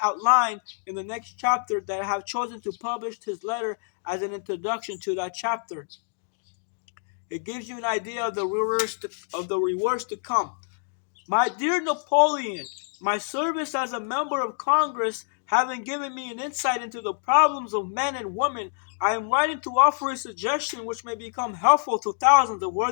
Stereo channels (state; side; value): silent; right; digital silence